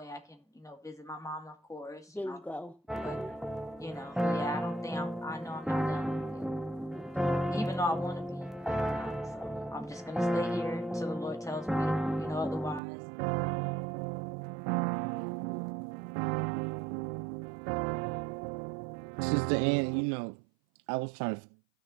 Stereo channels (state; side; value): drops out; left; at 12.8 s